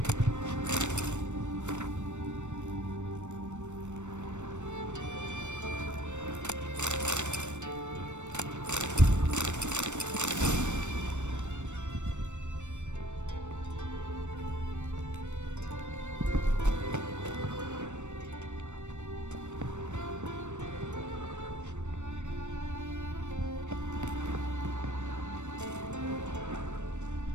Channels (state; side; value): late; left; 0.84 ms